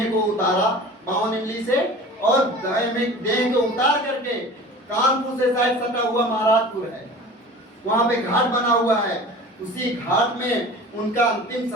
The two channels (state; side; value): normal; both; correlation 0.40